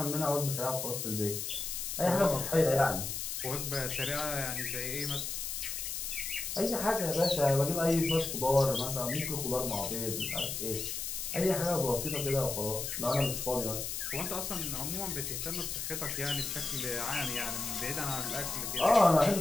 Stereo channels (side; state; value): left; noise; hiss, 4 dB below the sound